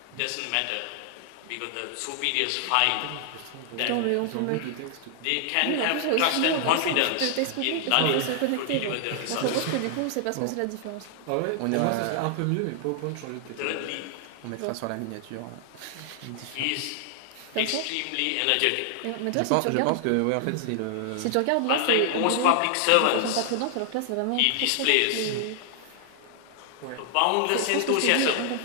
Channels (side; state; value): both; different; correlation 0.00